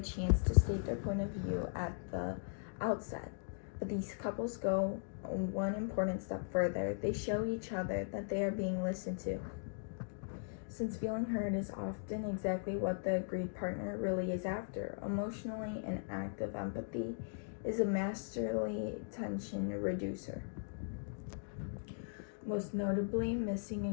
chance to state their point of view at the outset. But these couples go one important step further. They show each other that they are being listened to. Since feeling heard is often exactly what the agreed partner really is after, emotionally an act of empathy is a masterly tension reducer. Most notably, missing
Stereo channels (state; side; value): silent; right; digital silence